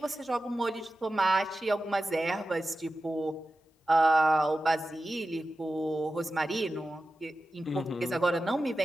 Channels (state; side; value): normal; both; correlation 0.93